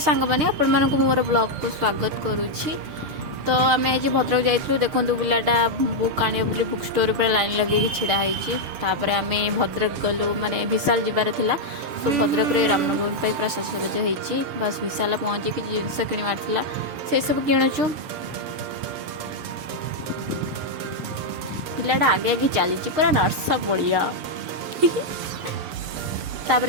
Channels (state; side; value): late; left; 7.0 ms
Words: मैंने आपण मानक मोर ब्लॉग को स्वागत करुच्ची। तो आम आज भद्रक जाइलु देखु पिलाटा बुक आने बोली बुक स्टोर पर लाइन लगे छिड़ा होपर आम भद्रक गलु माने विशाल जीवार थिला। सो भद्रक रे रामनवमी पूरा सजसज होती बस विशाल पहुँची कि जिनस किणवार थिला से सब किणुचु। पिलाटा आगे आगे चली पूरा नर्स बढ़िया